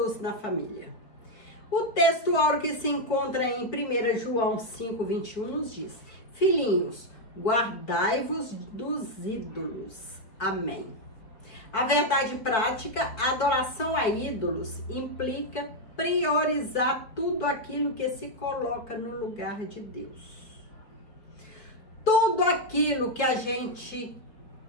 na Família. O texto áureo que se encontra em 1 João 5,21 nos diz: Filhinhos, guardai-vos dos ídolos. Amém. A verdade prática, a adoração a ídolos implica priorizar tudo aquilo que se coloca no lugar de Deus. Tudo aquilo que a gente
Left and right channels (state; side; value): late; right; 4.3 ms